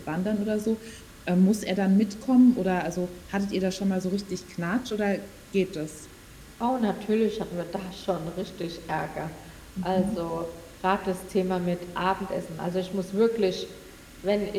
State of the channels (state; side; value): identical; both; correlation 1.00